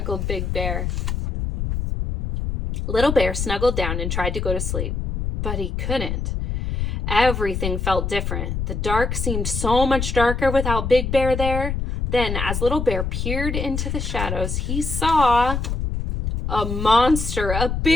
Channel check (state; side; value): noise; left; rumble, 2 dB below the sound